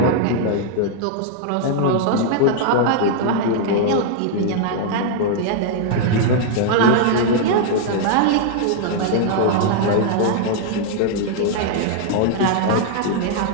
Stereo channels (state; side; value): different; both; correlation 0.00